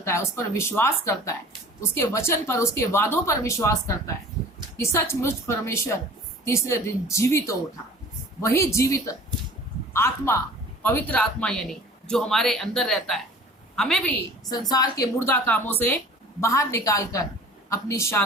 है, उस पर विश्वास करता है, उसके वचन पर, उसके वादों पर विश्वास करता है कि सचमुच परमेश्वर तीसरे दिन जीवित हो उठा, वही जीवित आत्मा, पवित्र आत्मा यानी जो हमारे अंदर रहता है, हमें भी संसार के मुर्दा कामों से बाहर निकालकर अपनी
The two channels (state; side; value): normal; both; correlation 0.45